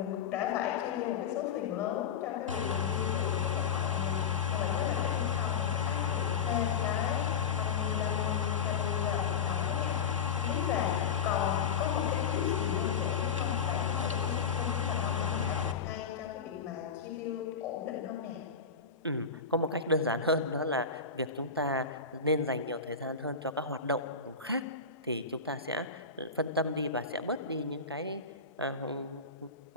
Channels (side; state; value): right; quieter; 5.7 dB